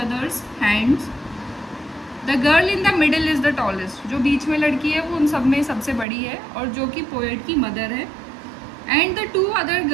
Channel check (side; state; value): left; drops out; at 6.1 s